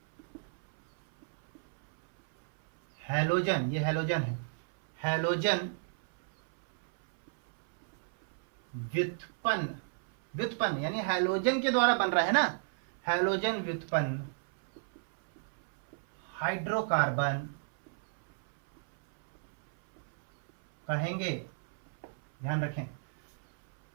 हैलोजन, ये हैलोजन है, हैलोजन व्युत्पन्न, व्युत्पन्न यानी हैलोजन के द्वारा बन रहा है ना, हैलोजन व्युत्पन्न हाइड्रोकार्बन कहेंगे। ध्यान रखें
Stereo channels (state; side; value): silent; left; 56 dB below the other